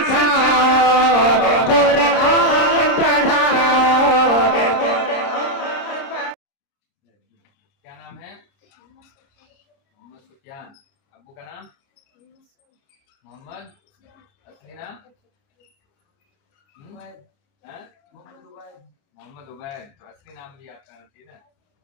قرآن پڑھاؤ. کیا نام ہے؟ محمد سفیان. ابو کا نام محمد. اصلی نام محمد عبید. تو اصلی نام بھی آپ کا ٹھیک ہے.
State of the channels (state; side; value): late; right; 30 ms